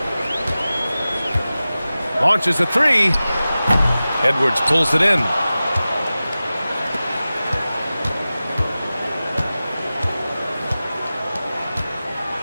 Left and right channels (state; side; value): inverted; both; correlation -0.96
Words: Launches a 3. Edwards pulls it in.